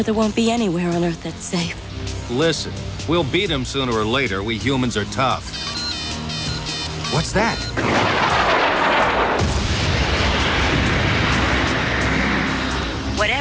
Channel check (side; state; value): both; identical; correlation 1.00